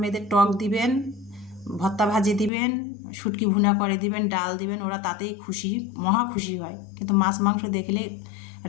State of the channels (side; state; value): right; drops out; at 2.5 s